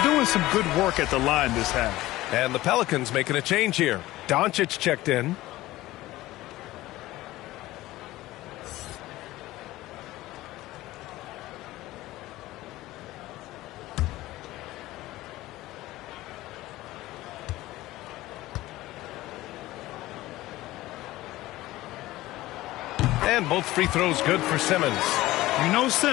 doing some good work at the line this half. And the Pelicans making a change here. Doncic checked in. And both free throws good for Simmons. You know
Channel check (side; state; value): right; quieter; 17.2 dB